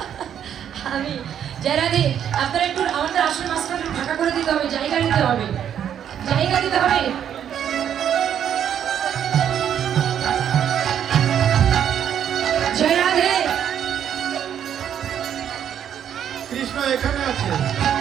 আমি জয় রাধে। আপনারা একটু আমাদের আসল মাস্টার ফাঁকা করে দিতে হবে, জায়গা দিতে হবে, জায়গা দিতে হবে। জয় রাধে। কৃষ্ণ এখানে আছে।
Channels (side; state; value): left; quieter; 9.3 dB